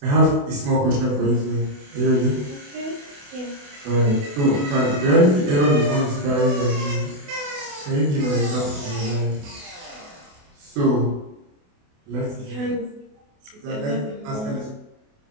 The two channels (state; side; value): late; left; 28 ms